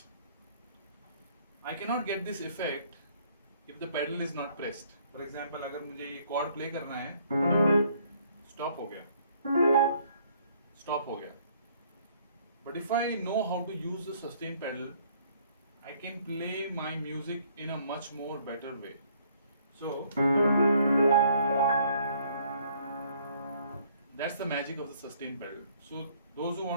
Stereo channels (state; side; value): inverted; both; correlation -0.63